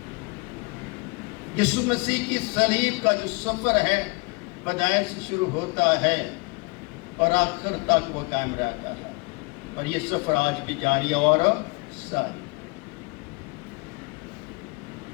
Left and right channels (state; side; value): quieter; right; 28.3 dB